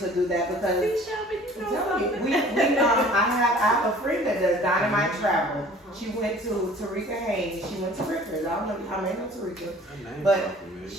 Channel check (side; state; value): both; normal; correlation 0.49